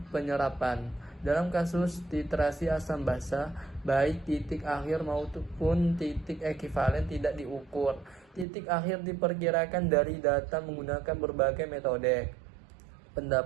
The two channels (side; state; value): left; drops out; at 8.5 s